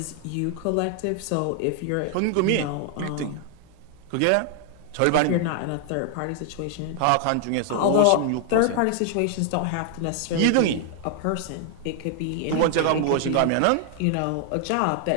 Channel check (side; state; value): both; different; correlation 0.00